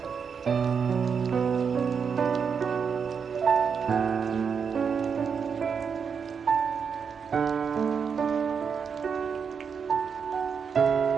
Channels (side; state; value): left; quieter; 6.4 dB